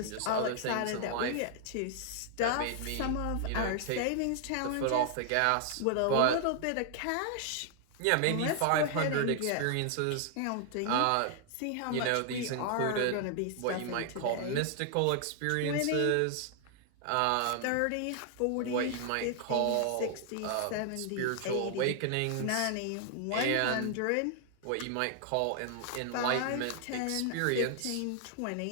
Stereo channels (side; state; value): both; different; correlation 0.00